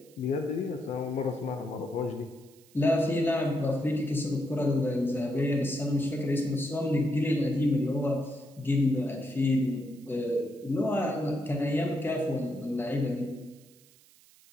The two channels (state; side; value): noise; right; hiss, 27 dB below the sound